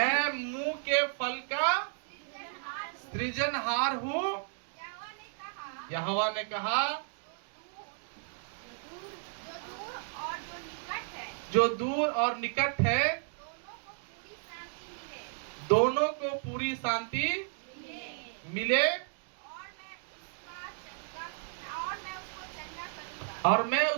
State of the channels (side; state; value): left; silent; digital silence